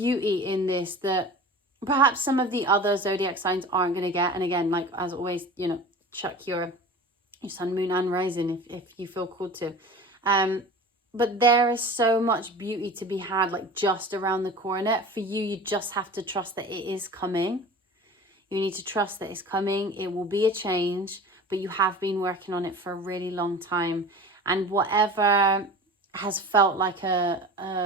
in this that perhaps some of the other zodiac signs aren't going to get. And again, like as always, you know, check your sun, moon and rising if you feel called to. But there is so much beauty to be had, like just around the corner. For you, you just have to trust that it is coming. You need to trust that it's coming. It will be a change, but you have been working on it for a really long time. And whatever has felt like a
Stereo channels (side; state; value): both; normal; correlation 0.37